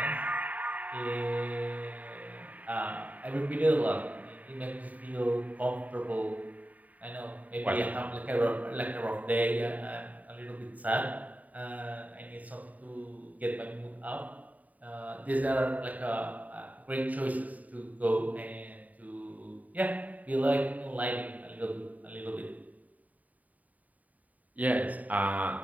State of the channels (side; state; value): left; late; 0.073 ms